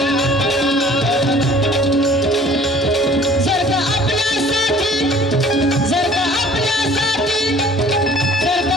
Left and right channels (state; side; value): normal; both; correlation 0.51